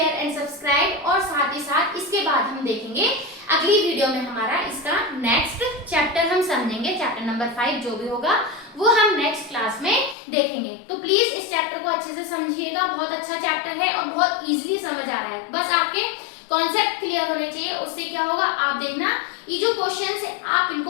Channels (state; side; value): drops out; right; at 10.2 s